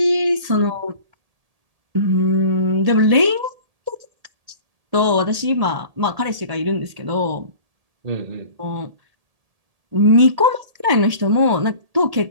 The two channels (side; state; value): left; late; 1.8 ms